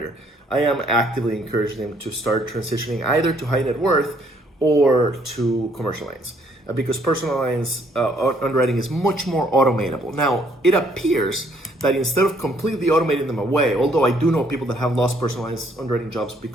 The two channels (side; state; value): both; normal; correlation 0.66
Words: I am actively encouraging them to start transitioning either to high net worth or to commercial lines. Because personal lines underwriting is much more automatable. Now, it appears that instead of completely automating them away, although I do know people that have lost personal lines underwriting jobs